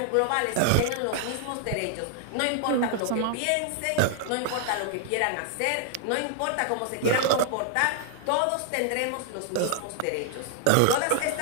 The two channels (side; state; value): both; different; correlation 0.00